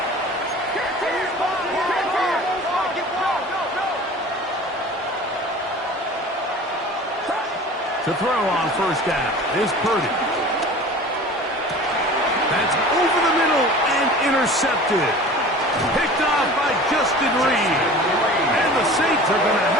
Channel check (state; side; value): normal; both; correlation 0.41